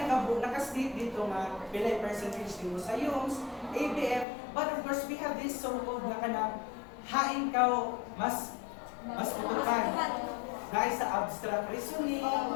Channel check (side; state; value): right; drops out; at 4.2 s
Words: dito nga pilay percentage din mo sa UMS, ABM, but of course we have this so-called na kanang hain ka mas putukan. Dahil sa abstract reasoning,